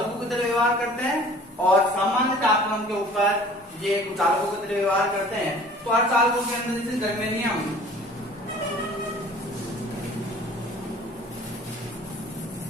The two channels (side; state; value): both; normal; correlation 0.48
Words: की तरह व्यवहार करते हैं और सामान्य तापमान के ऊपर ये कुचालकों की तरह व्यवहार करते हैं। तो अर्धचालकों के अंदर जैसे जर्मेनियम,